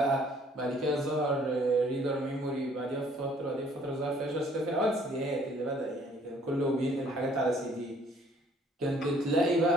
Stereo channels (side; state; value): both; normal; correlation 0.60